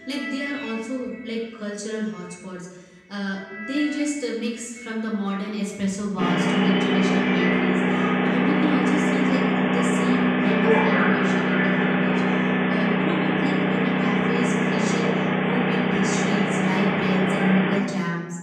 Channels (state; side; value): identical; both; correlation 1.00